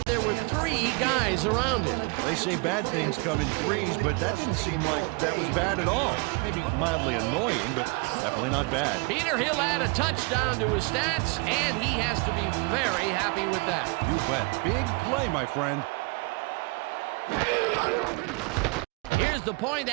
there were 3 guys around him. They say bad things come in threes, but that didn't seem like that was bad at all. Maybe mildly annoying, but definitely not bad. Peter, he'll add a touchdown to his stats, and he has to be very happy with that. You bet. Big play, my friend. Here's the point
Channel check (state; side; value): quieter; left; 27.7 dB